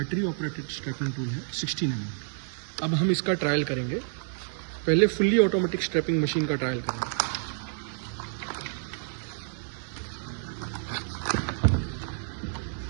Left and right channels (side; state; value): left; silent; digital silence